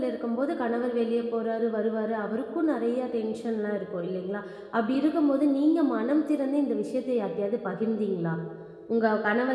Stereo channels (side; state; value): both; identical; correlation 1.00